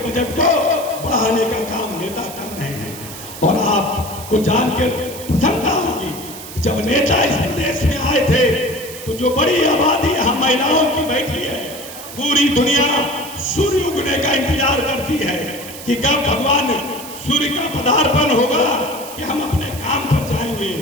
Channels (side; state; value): right; noise; hiss, 13 dB below the sound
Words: को बढ़ाने का काम नेता कर रहे हैं। और आपको जानकर प्रसन्नता होगी कि जब नेता इस प्रदेश में आए थे तो जो बड़ी आबादी यहाँ महिलाओं की बैठी है, पूरी दुनिया सूर्य उगने का इंतजार करती है कि कब भगवान सूर्य का पदार्पण होगा कि हम अपने काम पर जाएंगे।